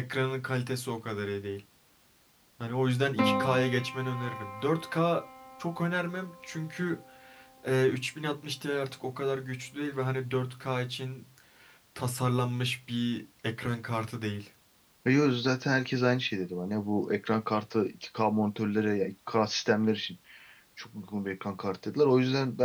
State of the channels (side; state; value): both; identical; correlation 1.00